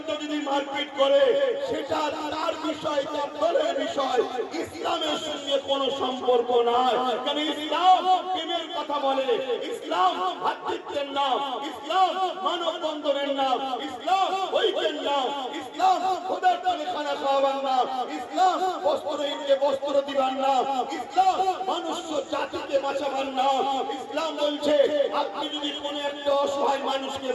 যদি মারপিট করে সেটা তার বিষয়, তার দলের বিষয়, ইসলামের সঙ্গে কোনো সম্পর্ক নাই। কারণ ইসলাম প্রেমের কথা বলে, ইসলাম ভাতৃত্বের নাম, ইসলাম মানব বন্ধনের নাম, ইসলাম ঐক্যের নাম, ইসলাম খোদার তলে খানা খাওয়াবার নাম, ইসলাম বস্ত্রহীনকে বস্ত্র দিবার নাম, ইসলাম মানুষ জাতিকে বাঁচাবার নাম। ইসলাম বলছে আপনি যদি কোন একটা অসহায় মানুষকে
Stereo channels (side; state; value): both; identical; correlation 1.00